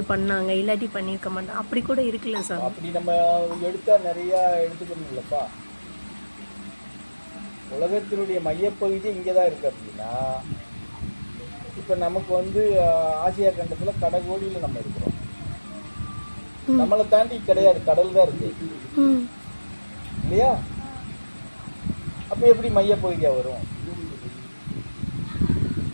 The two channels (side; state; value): both; inverted; correlation -1.00